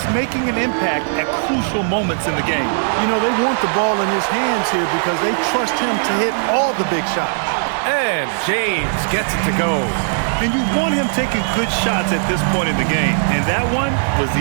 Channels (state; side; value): silent; left; 57 dB below the other